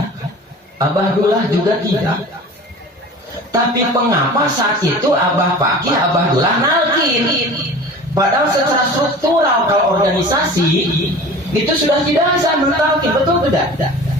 Abah Dullah juga tidak. Tapi mengapa saat itu Abah Fakih, Abah Dullah nalkin? Padahal secara struktural kalau organisasi itu sudah tidak bisa mentalkin, betul tidak?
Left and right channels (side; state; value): both; normal; correlation 0.39